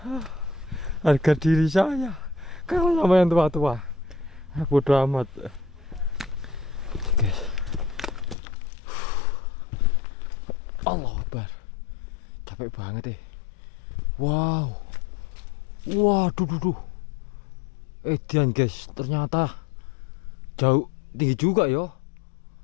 Harga diri saya kalah sama yang tua-tua. Bodo amat. Guys. Allah Akbar. Capek banget Wow. Waduh. Edian guys, ternyata jauh tinggi juga ya.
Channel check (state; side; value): drops out; right; at 8.3 s